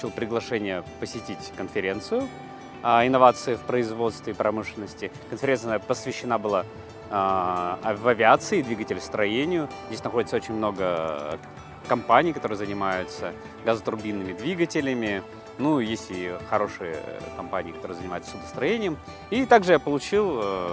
приглашение посетить конференцию инновации в производстве и промышленности. Конференция посвящена была в авиации, двигателестроению. Здесь находится очень много компаний, которые занимаются газотурбинными двигателями. Ну, есть и хорошие компании, которые занимаются судостроением. И также я получил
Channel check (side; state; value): both; identical; correlation 1.00